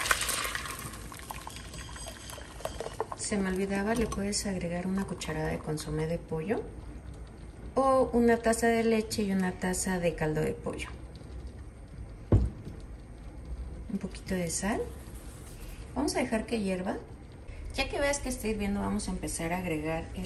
Se me olvidaba, le puedes agregar una cucharada de consomé de pollo o una taza de leche y una taza de caldo de pollo. Un poquito de sal. Vamos a dejar que hierva. Ya que veas que está hirviendo, vamos a empezar a agregar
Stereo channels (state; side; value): identical; both; correlation 1.00